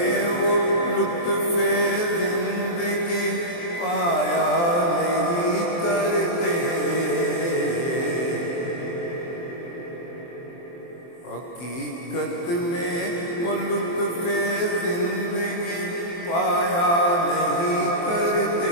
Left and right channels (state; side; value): late; right; 23 ms